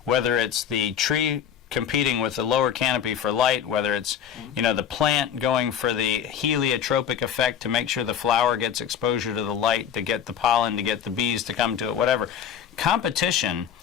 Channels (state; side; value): quieter; right; 8.6 dB